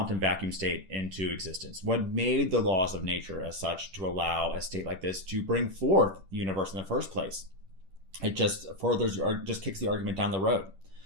vacuum state into existence? What made the laws of nature as such to allow a state like this to bring forth the universe in the first place? It just kicks the argument down the road.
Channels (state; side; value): late; left; 10 ms